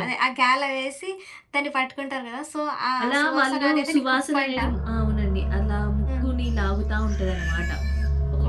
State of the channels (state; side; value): identical; both; correlation 1.00